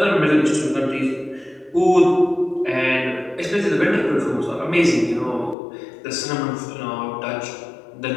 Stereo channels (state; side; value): drops out; right; at 5.6 s